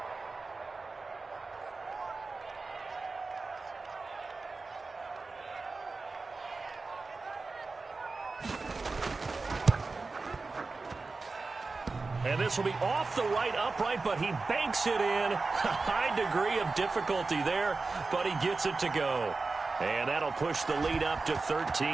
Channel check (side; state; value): left; quieter; 3.9 dB